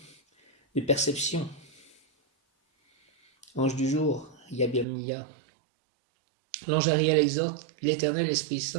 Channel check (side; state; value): left; drops out; at 4.9 s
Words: de perception. Ange du jour, Yabamia. L'ange Ariel exhorte, l'Éternel Esprit